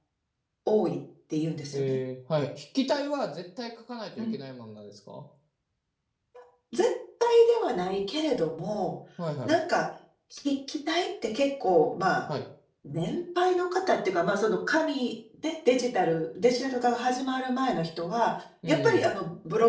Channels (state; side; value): identical; both; correlation 1.00